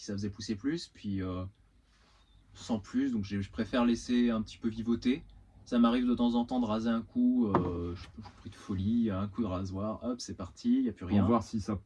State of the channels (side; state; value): both; identical; correlation 1.00